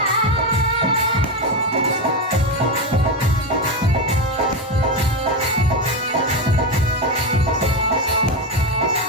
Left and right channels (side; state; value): both; normal; correlation 0.13